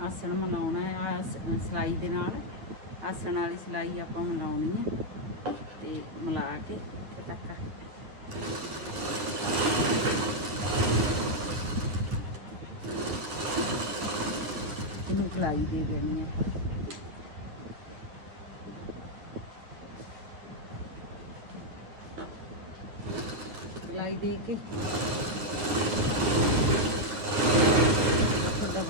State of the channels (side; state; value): left; late; 9.4 ms